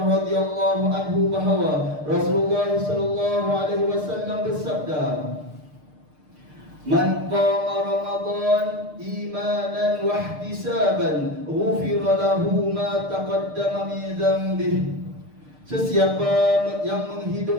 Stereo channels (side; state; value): left; late; 6.6 ms